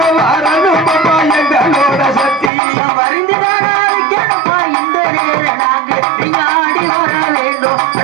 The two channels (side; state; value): left; drops out; at 2.5 s